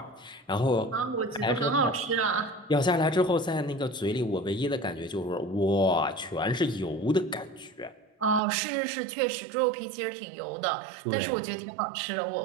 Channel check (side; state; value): left; drops out; at 8.4 s